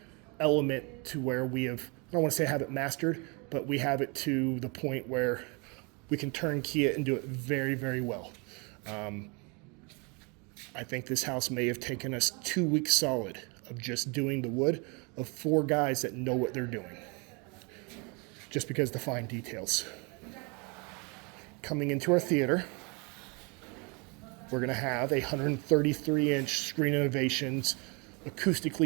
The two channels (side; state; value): left; quieter; 31.4 dB